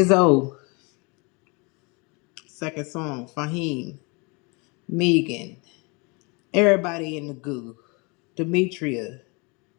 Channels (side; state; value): right; quieter; 29.9 dB